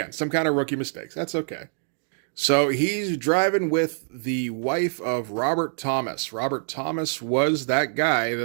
some kind of rookie mistakes. That's okay. So he's driving with the wife of Robert Thomas. Robert Thomas was that guy,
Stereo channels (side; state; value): left; silent; digital silence